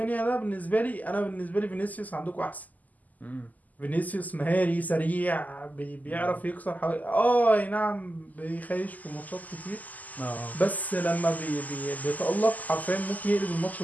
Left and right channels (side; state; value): right; late; 0.080 ms